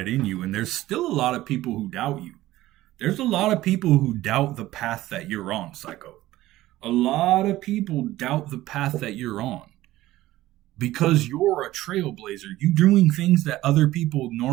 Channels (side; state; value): left; quieter; 16.1 dB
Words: in you, and there's still a lot of people who doubt you. There's a lot of people who doubt the path that you're on, Psycho. A lot of people doubt the path that you're on. Because you're a trailblazer. You're doing things that other people